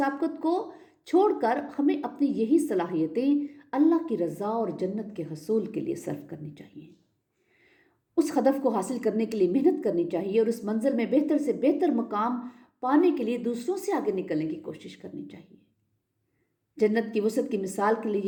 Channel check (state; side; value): identical; both; correlation 1.00